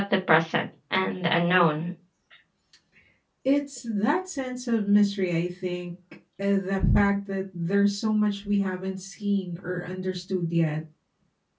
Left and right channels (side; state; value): both; identical; correlation 1.00